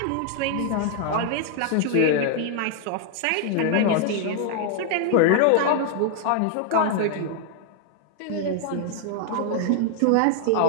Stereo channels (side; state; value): both; different; correlation 0.00